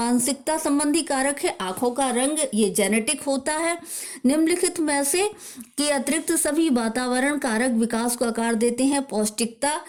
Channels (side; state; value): both; identical; correlation 1.00